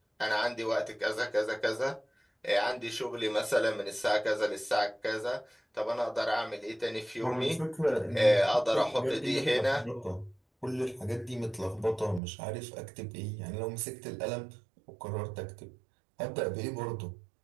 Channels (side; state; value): left; drops out; at 12.2 s